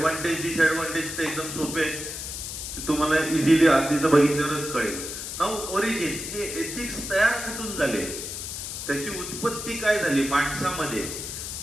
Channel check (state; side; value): noise; left; hiss, 7 dB below the sound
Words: disadvantage ते एकदम सोपे आहे, ते तुम्हाला इझिली आधीच बघितल्यावरच कळेल. नाऊ ओरिजिन, हे एथिक्स तयार कुठून झाले, त्याची उत्पत्ती काय झाली माणसामध्ये.